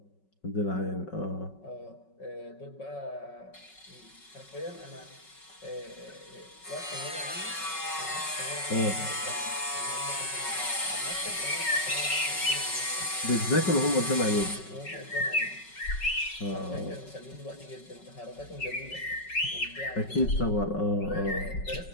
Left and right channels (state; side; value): late; right; 5.4 ms